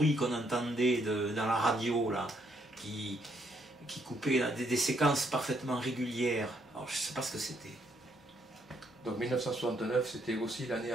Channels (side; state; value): both; normal; correlation 0.72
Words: qu'on entendait dans la radio, là, qui coupait là, des séquences parfaitement régulières. Alors je ne sais pas ce que c'était. Donc 1969, c'était aussi l'année